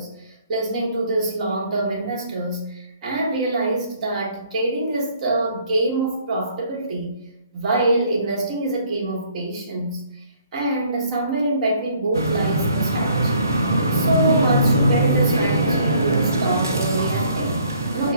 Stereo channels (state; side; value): inverted; both; correlation -0.61